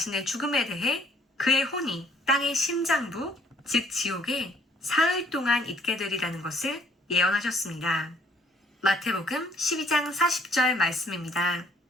죽음에 대해 그의 혼이 땅의 심장부, 즉 지옥에 사흘 동안 있게 되리라는 것을 예언하셨습니다. 마태복음 12장 40절 말씀입니다.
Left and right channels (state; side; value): normal; both; correlation 0.63